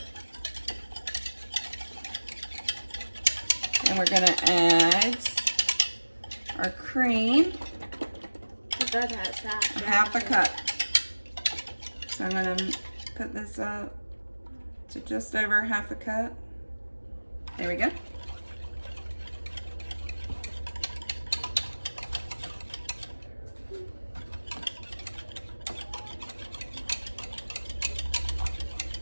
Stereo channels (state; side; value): inverted; both; correlation -1.00